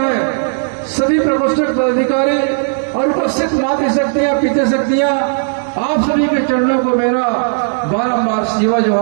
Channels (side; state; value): left; silent; digital silence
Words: सभी प्रकोष्ठ पदाधिकारी और उपस्थित मातृशक्तियां, पितृशक्तियां, आप सभी के चरणों को मेरा बारंबार सेवा